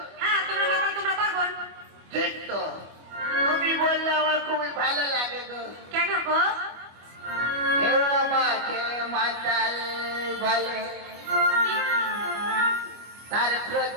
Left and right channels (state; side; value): late; left; 25 ms